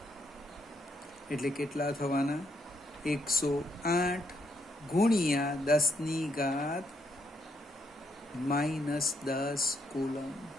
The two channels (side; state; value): both; normal; correlation 0.76